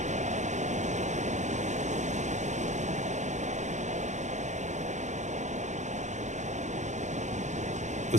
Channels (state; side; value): late; left; 0.34 ms